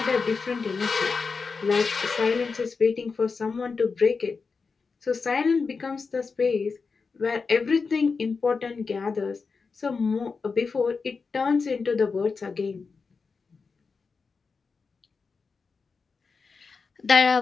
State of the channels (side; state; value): right; quieter; 4.8 dB